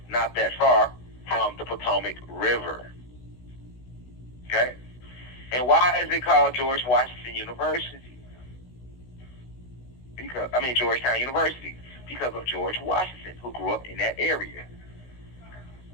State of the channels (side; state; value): right; late; 16 ms